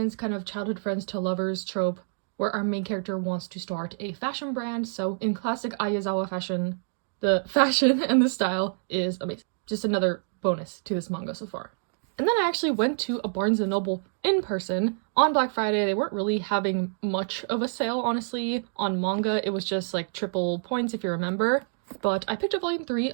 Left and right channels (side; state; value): left; silent; digital silence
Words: kind of childhood friends to lovers trope, where our main character wants to start a fashion brand. So in classic Ayazawa fashion, the fashion and the style is amazing. Just another bonus to this manga so far. And then I actually went to a Barnes & Noble in person on Black Friday. They weren't really having much of a sale, honestly. On manga, it was just like triple points if you remember. But I picked up volume 3